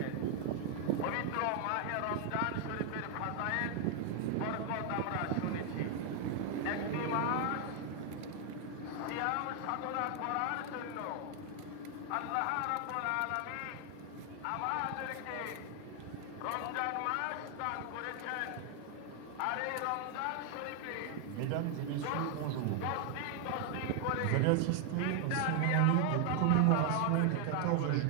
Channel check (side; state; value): both; different; correlation 0.00